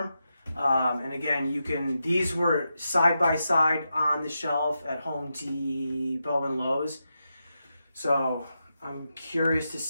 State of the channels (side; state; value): both; inverted; correlation -0.87